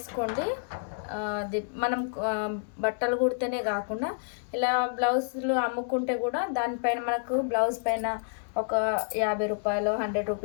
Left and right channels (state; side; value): silent; right; digital silence